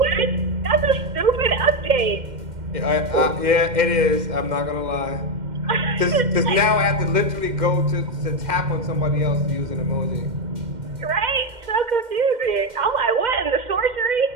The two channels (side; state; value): left; late; 2.1 ms